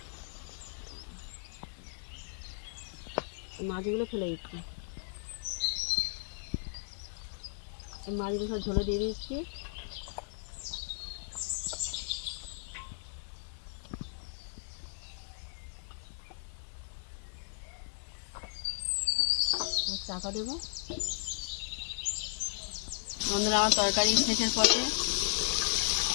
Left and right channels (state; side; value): silent; right; digital silence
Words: মাছগুলো ফেলে দিচ্ছি, মাছগুলো সব ঝোলে দিয়ে দিচ্ছি। চাপা দেবো। বন্ধুরা আমার তরকারি শেষের পথে,